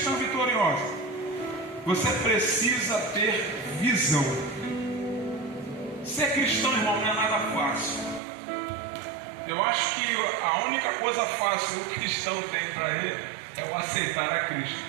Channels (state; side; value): drops out; left; at 8.2 s